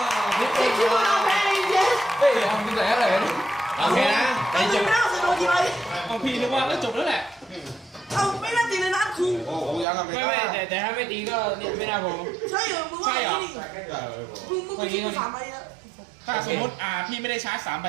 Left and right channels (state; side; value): drops out; left; at 9.9 s